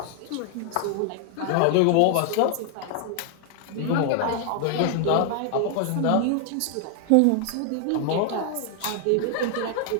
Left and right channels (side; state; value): both; different; correlation 0.00